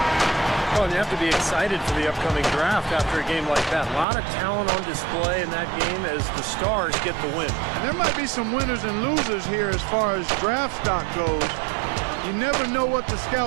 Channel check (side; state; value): left; drops out; at 4.0 s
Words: Well, you have to be excited for the upcoming draft after a game like that. A lot of talent on display in that game as the Stars get the win. And there might be some winners and losers here as far as draft stock goes. You never know what the